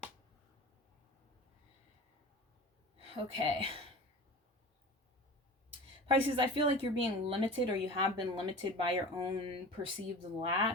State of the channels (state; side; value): normal; both; correlation 0.35